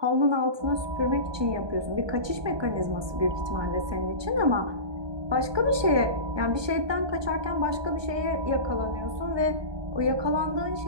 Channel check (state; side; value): late; left; 1.2 ms